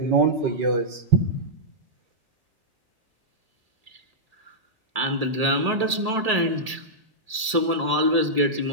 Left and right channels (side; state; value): left; late; 1.8 ms